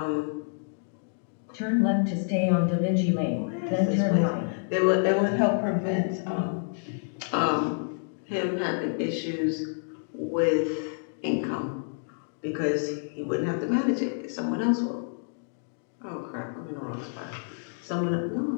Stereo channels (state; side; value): silent; right; digital silence